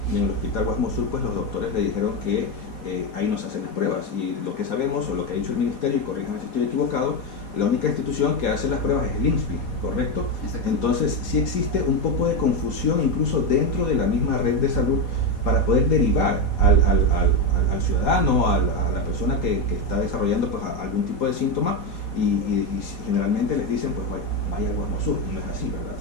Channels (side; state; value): right; late; 4.3 ms